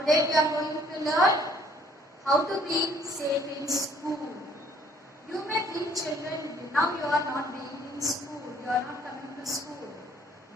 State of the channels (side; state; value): both; normal; correlation 0.61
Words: we are going to learn how to be safe in school. You may think children, now you are not being in school, you are not coming to school.